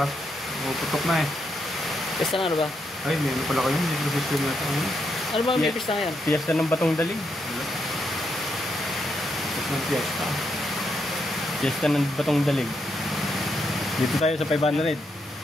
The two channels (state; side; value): normal; both; correlation 0.80